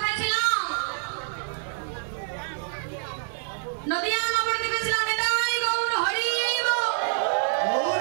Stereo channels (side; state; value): left; silent; 61 dB below the other